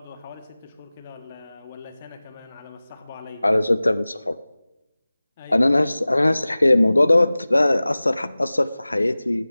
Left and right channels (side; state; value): both; inverted; correlation -0.98